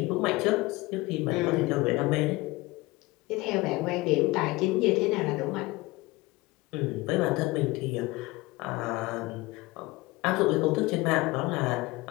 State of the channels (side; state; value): right; quieter; 21.5 dB